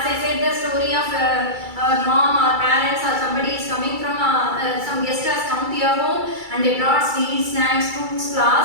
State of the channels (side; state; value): left; late; 2.3 ms